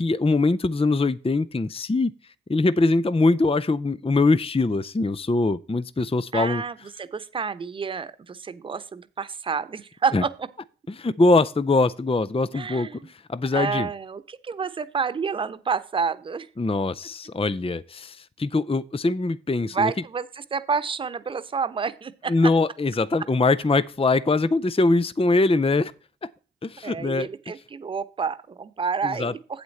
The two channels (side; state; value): both; normal; correlation 0.66